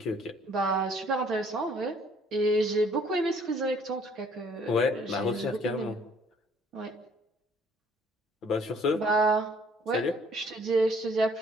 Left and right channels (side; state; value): both; normal; correlation 0.60